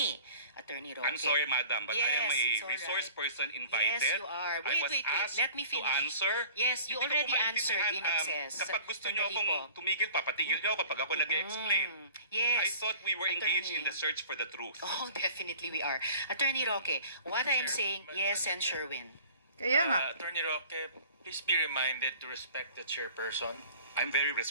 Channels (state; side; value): inverted; both; correlation -0.46